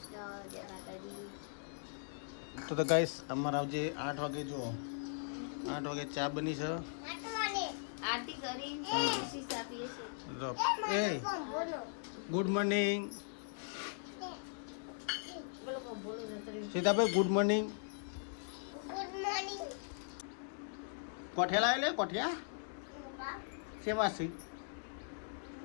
તો ગાઈસ અમારે આવજે 8 વાગે. જો 8 વાગે ચા બની છે. એ good morning Sitabhai, good morning. કોઠિયા લાવે લે, કોઠિયા શેમાં છે?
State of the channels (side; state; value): right; silent; digital silence